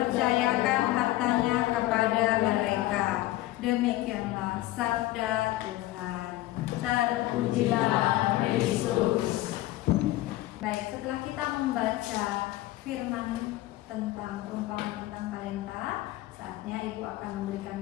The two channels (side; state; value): right; quieter; 16.5 dB